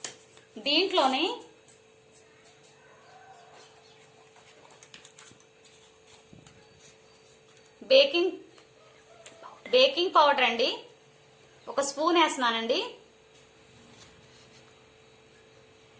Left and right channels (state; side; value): identical; both; correlation 1.00